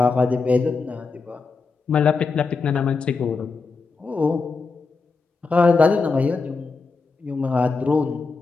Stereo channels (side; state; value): right; quieter; 4.3 dB